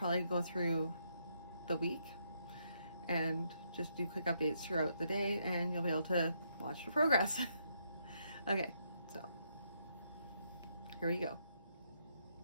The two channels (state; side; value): inverted; both; correlation -0.76